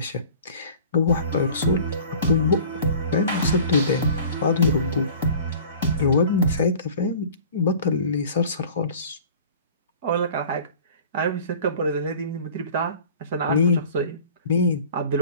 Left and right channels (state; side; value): inverted; both; correlation -0.45